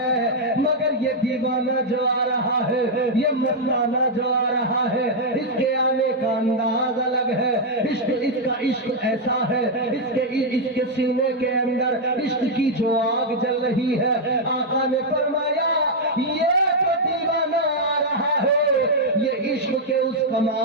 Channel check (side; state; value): both; normal; correlation -0.02